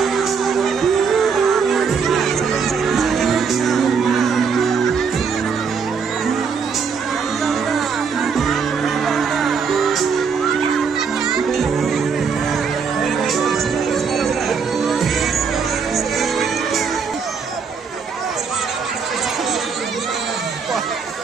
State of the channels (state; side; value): quieter; left; 5.8 dB